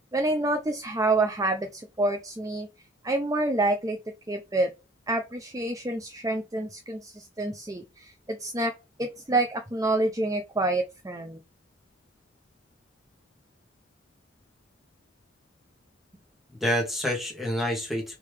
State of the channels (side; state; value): both; normal; correlation 0.53